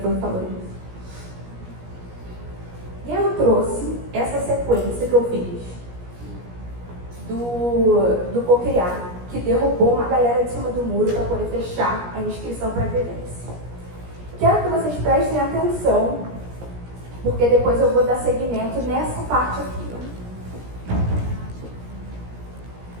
que falou disso? E eu trouxe essa sequência que eu fiz do co-criar, que derrubou uma galera de cima do muro para poder fechar a inscrição para a vivência. Quero que vocês prestem atenção, porque depois eu vou dar seguimento nessa parte aqui.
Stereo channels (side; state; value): left; late; 17 ms